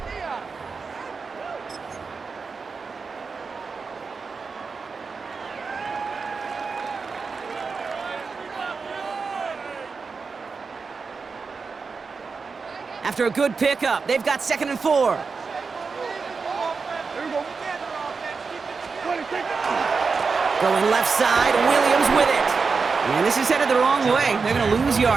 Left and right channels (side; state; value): left; quieter; 4.9 dB